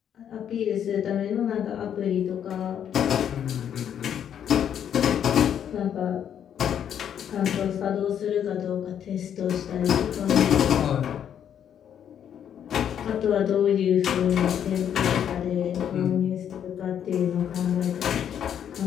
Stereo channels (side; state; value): right; quieter; 9.2 dB